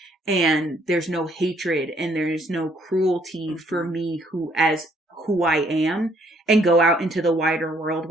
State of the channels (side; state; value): both; normal; correlation 0.66